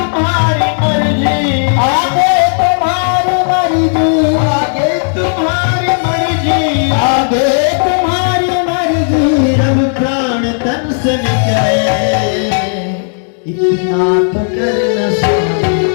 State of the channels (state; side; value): silent; right; digital silence